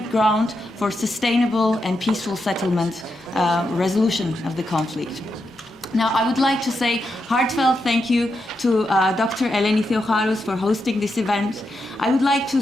ground for sustainable and peaceful settlement, resolution of the conflict. Now, I would like to say heartfelt thank you to Dr. Eleni Theocharous for hosting this event. I would like to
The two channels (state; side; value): normal; both; correlation 0.85